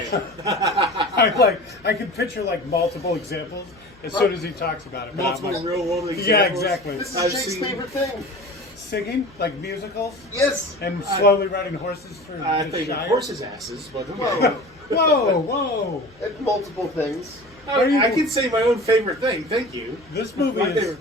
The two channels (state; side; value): noise; left; hum, 28 dB below the sound